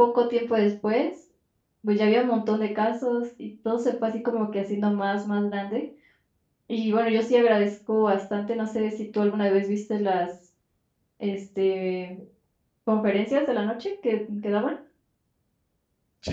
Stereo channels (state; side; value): identical; both; correlation 1.00